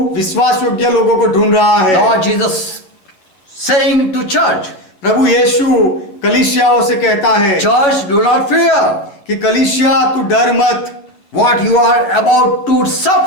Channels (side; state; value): right; late; 11 ms